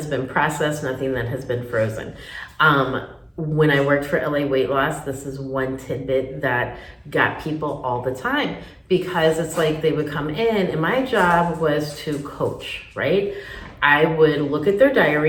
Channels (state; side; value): identical; both; correlation 1.00